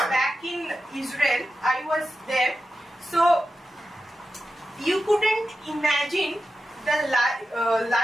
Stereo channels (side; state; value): both; normal; correlation 0.91